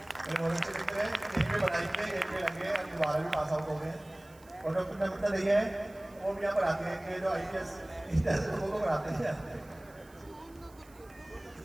ये वॉलंटियर मित्र है, यहीं पे पढ़ाई के यहीं पे लगे, अभी 12वीं पास आउट हो गए हैं। और डॉक्टर नमिता नहीं है, वो भी यहाँ पर आते हैं कि जो IPS इस तरह से लोगों को पढ़ाते हैं।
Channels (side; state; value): right; noise; hiss, 27 dB below the sound